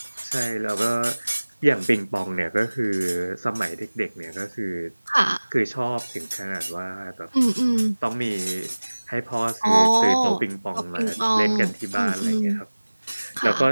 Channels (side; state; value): both; inverted; correlation -1.00